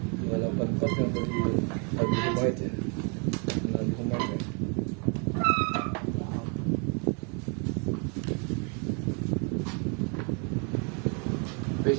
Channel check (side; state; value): left; quieter; 36.4 dB